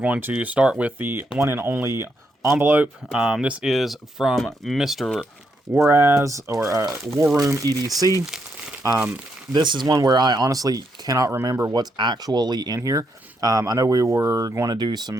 to start with the one and only envelope. This is from Mr. Waraz, or War Room EDC. This is one where I honestly cannot remember what's actually in here. I know we were going to do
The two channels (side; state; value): both; normal; correlation 0.79